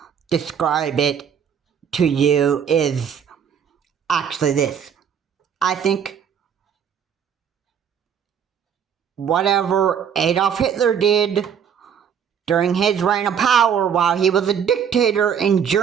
describe it to you is actually this. I think whatever Adolf Hitler did during his reign of power while he was a dictator in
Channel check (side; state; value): left; quieter; 7.9 dB